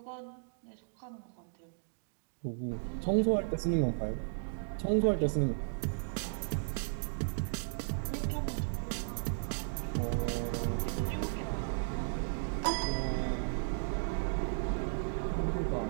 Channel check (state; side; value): silent; left; digital silence